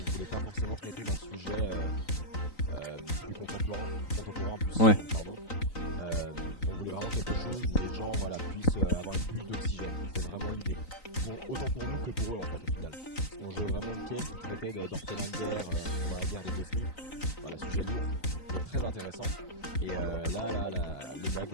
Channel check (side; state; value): right; late; 3.9 ms